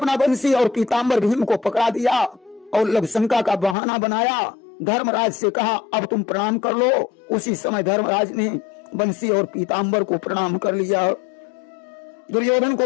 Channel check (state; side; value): drops out; right; at 3.8 s